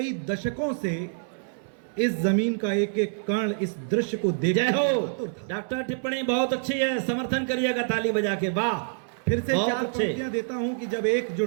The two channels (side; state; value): left; silent; 60 dB below the other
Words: दशकों से इस जमीन का एक एक कण इस दृश्य को देख जय हो डॉक्टर, टिप्पणी बहुत अच्छी है, समर्थन करिएगा ताली बजा के। वाह, फिर से बहुत 4 अच्छे। पंक्तियां देता हूं कि जब